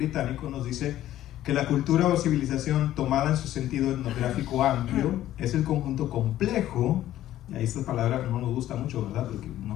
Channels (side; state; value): right; quieter; 13.3 dB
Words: nos dice que la cultura o civilización tomada en su sentido etnográfico amplio es el conjunto complejo, y ahí esta palabra no nos gusta mucho, ¿verdad? Porque